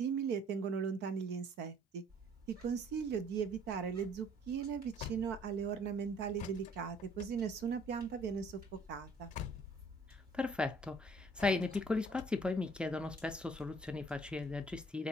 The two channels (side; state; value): both; normal; correlation 0.58